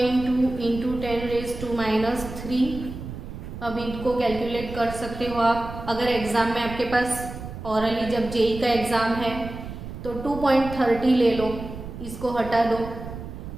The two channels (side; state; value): right; noise; rumble, 10 dB below the sound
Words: two into 10⁻³ अब इनको कैलकुलेट कर सकते हो आप। अगर एग्जाम में आपके पास ऑरली जब जेई का एग्जाम है तो 2.30 ले लो, इसको हटा दो,